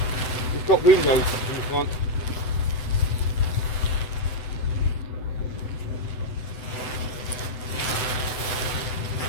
it's got windows in the front.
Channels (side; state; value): right; late; 7.9 ms